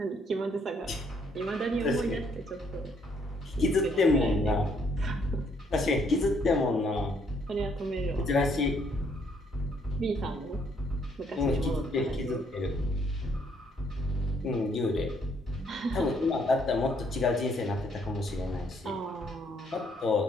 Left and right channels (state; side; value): normal; both; correlation 0.69